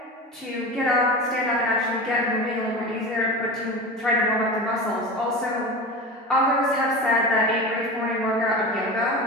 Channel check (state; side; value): normal; both; correlation 0.29